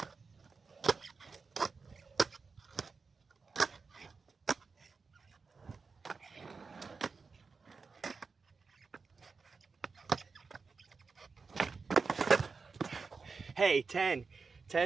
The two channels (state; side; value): quieter; left; 4.7 dB